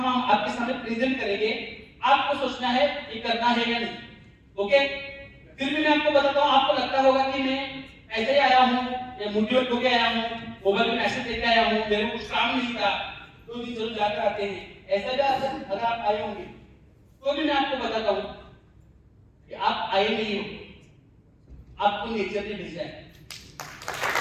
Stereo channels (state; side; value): identical; both; correlation 1.00